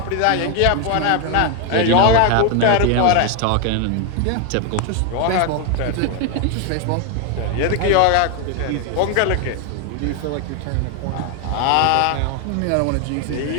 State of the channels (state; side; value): different; both; correlation 0.01